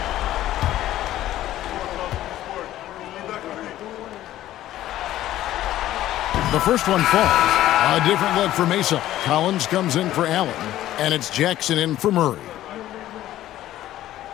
The first one falls. A different look for Mesa. Collins comes in for Allen, and it's Jackson in for Murray.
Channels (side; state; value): right; quieter; 13.7 dB